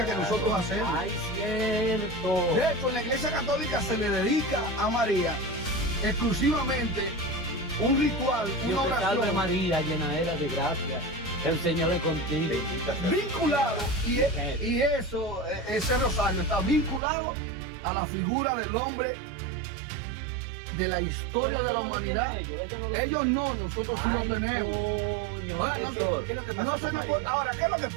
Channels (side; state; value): left; drops out; at 17.0 s